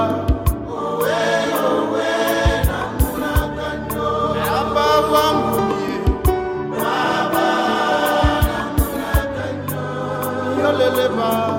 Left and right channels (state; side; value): identical; both; correlation 1.00